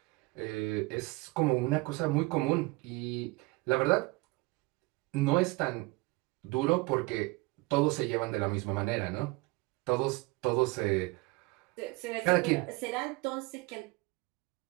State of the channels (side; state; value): left; quieter; 24.8 dB